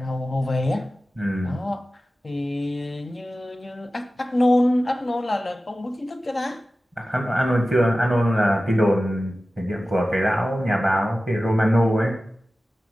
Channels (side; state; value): both; normal; correlation 0.95